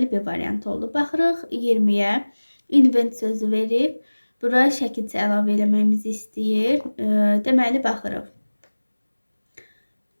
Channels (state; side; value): inverted; both; correlation -1.00